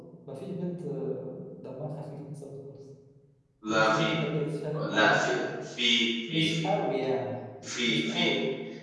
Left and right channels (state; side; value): identical; both; correlation 1.00